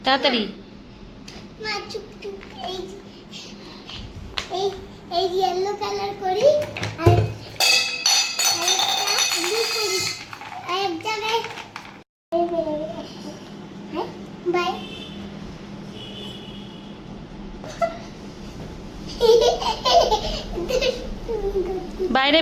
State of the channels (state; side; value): identical; both; correlation 1.00